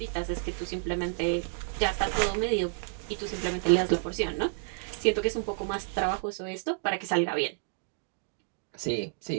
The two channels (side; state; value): left; silent; digital silence